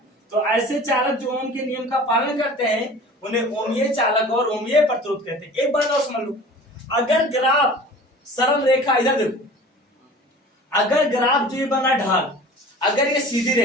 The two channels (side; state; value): both; normal; correlation 0.42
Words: तो ऐसे चालक जो ओम के नियम का पालन करते हैं उन्हें ओमीय चालक और ओमीय प्रतिरोध कहते हैं। एक बात और समझ लो, अगर ग्राफ सरल रेखा, इधर देखो, अगर ग्राफ जो ये बना ढाल, अगर ये सीधी